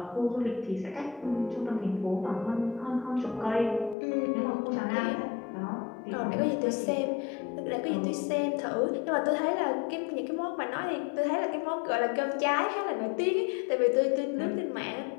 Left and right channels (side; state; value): right; drops out; at 4.0 s